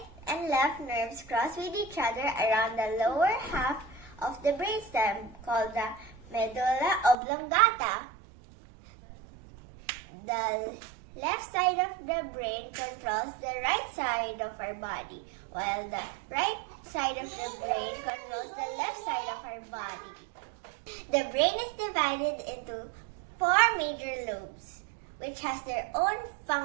and left nerves cross with each other around the lower half of the brainstem called the medulla oblongata. The left side of the brain controls the right side of our body, while the right side of the brain controls the left side of our body. The brain is divided into 4 major lobes, which has their own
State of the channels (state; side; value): drops out; left; at 7.2 s